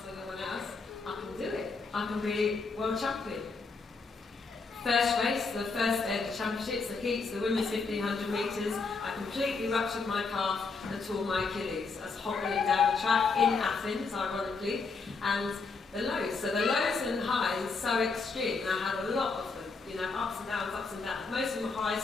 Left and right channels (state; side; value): quieter; right; 4.4 dB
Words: than anyone else, I can do it. I can be world champion. First race, the first day of the championships, the heats, the women's 1500 metres, I completely ruptured my calf and tore my Achilles. I was hobbling down the track in Athens, ironically, and the lows. So the lows and highs so extreme, I had a lot of them, you know, ups and downs, ups and downs. Most of them were highs